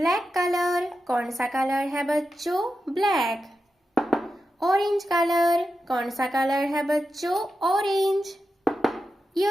कलर, कौन सा कलर है बच्चों? ब्लैक। ऑरेंज कलर, कौन सा कलर है बच्चों? ऑरेंज।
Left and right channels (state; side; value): normal; both; correlation 0.90